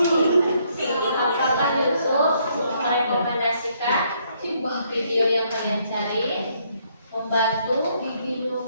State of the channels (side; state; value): both; inverted; correlation -0.70